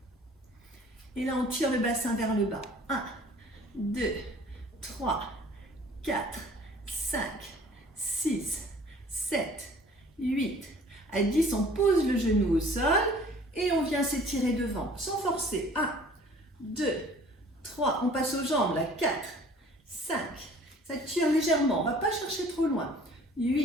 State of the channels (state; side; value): normal; both; correlation 0.51